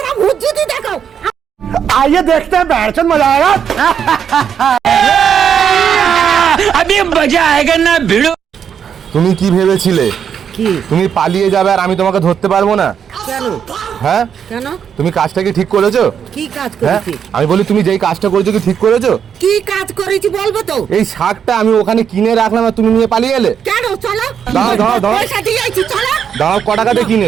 भूत जूती देखो। आइए देखते हैं बैठन मजा आएगा अभी मजा आएगा ना भिड़ो। তুমি কি ভেবেছিলে কি তুমি পালিয়ে যাবে আর আমি তোমাকে ধরতে পারবো না? কেন হ্যাঁ, কেন তুমি কাজটা কি ঠিক করেছো? কি কাজ হ্যাঁ, করেছি আমি বলি তুমি যেই কাজটা করেছো কি ঠিক করেছো? কি কাজ করেছি বলবো তো? এই শাকটা আমি ওখানে কিনে রাখলাম আর তুমি নিয়ে পালিয়ে এলে। কেন চলো দাঁড়াও, দাঁড়াও, দাঁড়াও। পয়সা দিয়ে আইছি চলো। দাঁড়াও, ক টাকা দিয়ে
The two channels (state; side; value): quieter; left; 7.9 dB